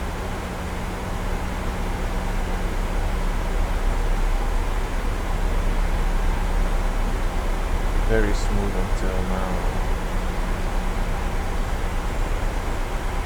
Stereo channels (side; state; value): both; identical; correlation 1.00